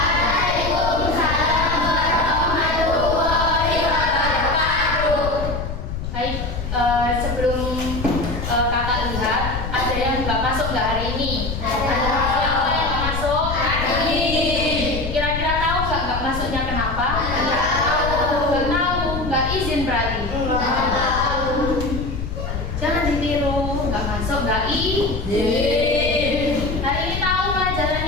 warahmatullahi wabarakatuh. Baik, sebelum kakak lihat, ada yang nggak masuk nggak hari ini? Siapa yang nggak masuk? Kira-kira tahu nggak masuknya kenapa? Nggak tahu, nggak izin berarti. Jangan ditiru, nggak masuk nggak izin. Hari ini tahu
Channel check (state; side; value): noise; left; rumble, 5 dB below the sound